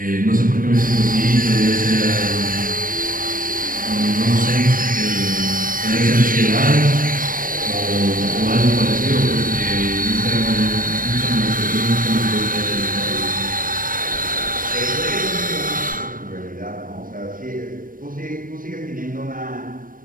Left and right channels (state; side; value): late; left; 0.40 ms